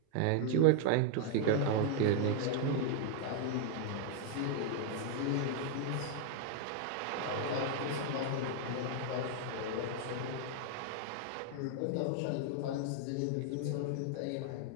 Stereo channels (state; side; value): different; both; correlation 0.00